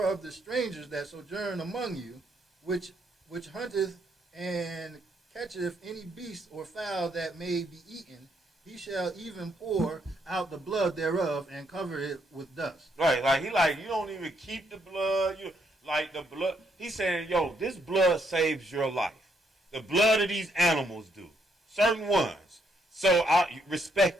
of the strangers that sojourn among you, which hunteth and catcheth any beast or fowl that may be eaten, he shall even pour out the blood thereof and cover it with dust. Right, like you don't even keep the blood. You like the blood. He's saying, yo, this blood saves your life. The blood of these animals do. Certain ones. So I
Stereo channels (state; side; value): normal; both; correlation 0.74